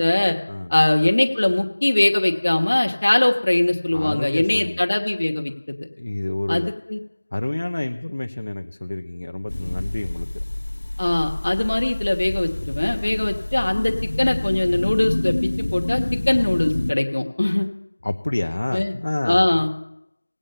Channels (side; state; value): both; inverted; correlation -1.00